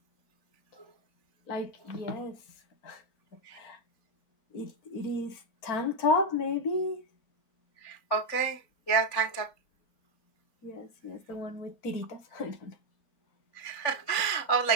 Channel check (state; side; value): late; right; 3.5 ms